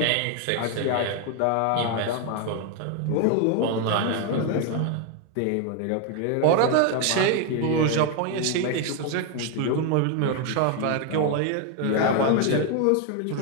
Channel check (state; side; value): different; both; correlation 0.01